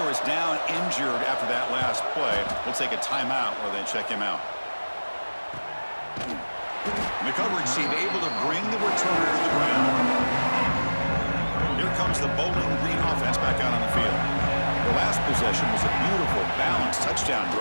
is down injured after that last play. We'll take a timeout while they check him out. And the coverage team able to bring the returner to the ground. Here comes the Bowling Green offense back out on the field. The last possession was a beautiful, balanced touchdown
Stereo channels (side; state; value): both; inverted; correlation -1.00